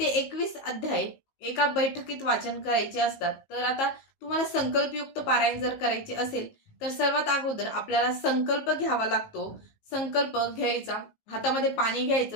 21 अध्याय एका बैठकीत वाचन करायचे असतात. तर आता तुम्हाला संकल्पयुक्त पारायण जर करायचे असेल तर सर्वात अगोदर आपल्याला संकल्प घ्यावा लागतो. संकल्प घ्यायचा, हातामध्ये पाणी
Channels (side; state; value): right; late; 19 ms